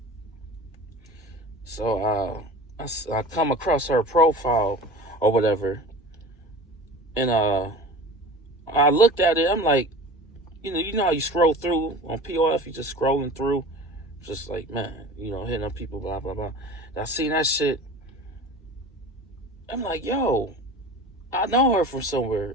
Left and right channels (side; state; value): both; normal; correlation 0.37